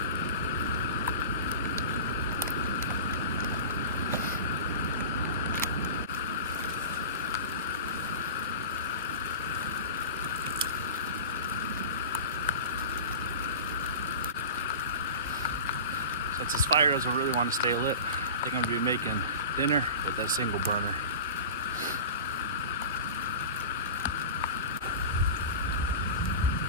Since this fire doesn't really want to stay lit, I think I'm going to be making dinner with that single burner.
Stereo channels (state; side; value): inverted; both; correlation -0.33